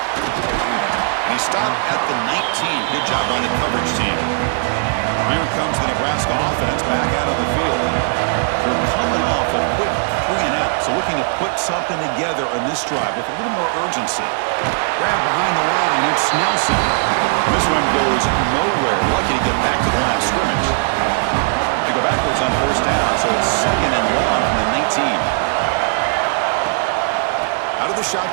And he stopped at the 19. Good job by the coverage team. Here comes the Nebraska offense back out on the field. They're coming off a quick 3 and out, so looking to put something together on this drive with a little more urgency. Grab behind the line, it's Nelson. This one goes nowhere. Lucky to get back to the line of scrimmage. They go backwards on 1st down, so it's 2nd and long from the 19. Out of the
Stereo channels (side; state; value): left; silent; 57 dB below the other